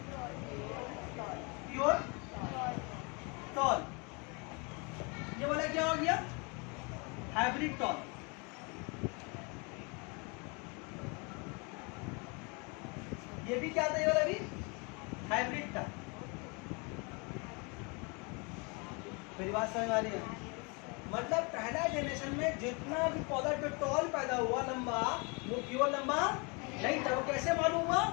प्योर टॉल। ये वाला क्या हो गया, हाइब्रिड टॉल। ये भी क्या था, ये वाला भी हाइब्रिड था। मेरी बात समझ आ रही है? मतलब पहला जनरेशन में जितना भी पौधा जो टॉल पैदा हुआ लंबा, वो प्योर लंबा नहीं था। वो कैसे मालूम हुआ,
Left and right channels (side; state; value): right; quieter; 31.3 dB